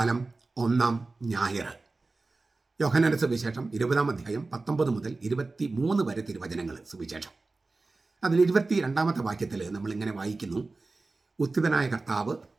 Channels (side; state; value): left; quieter; 3.5 dB